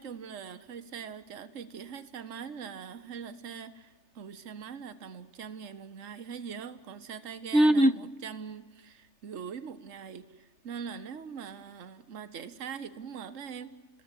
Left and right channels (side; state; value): left; late; 3.3 ms